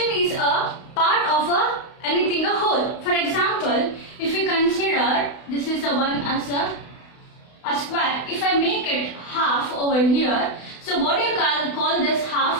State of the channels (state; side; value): late; right; 32 ms